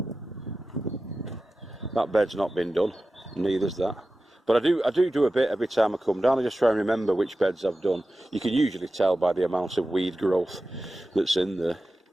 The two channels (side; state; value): both; normal; correlation 0.94